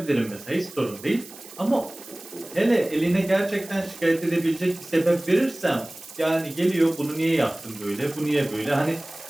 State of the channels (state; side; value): noise; right; hiss, 18 dB below the sound